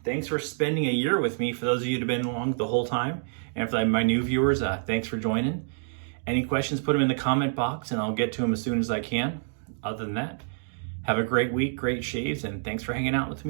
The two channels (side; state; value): left; silent; digital silence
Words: Thanks for spending a year with me, for those of you that have been along the whole time. And for my new viewers, thanks for joining. Any questions, put them in the comment box and I'll get to them as soon as I can. Other than that, have a great week, great shaves, and thanks for hanging out with